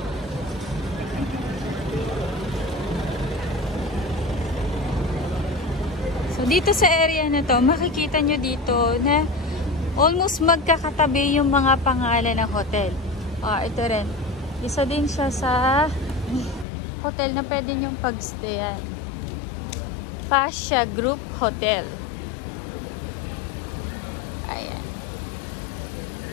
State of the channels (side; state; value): right; drops out; at 16.7 s